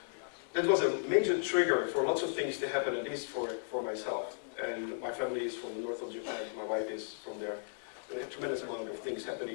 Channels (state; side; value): silent; right; digital silence